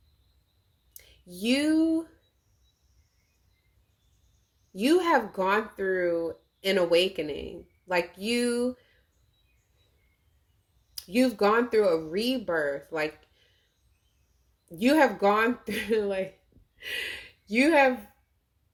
You have gone through an awakening. Like you've gone through a rebirth. Like you have gone through, like you have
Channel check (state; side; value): identical; both; correlation 1.00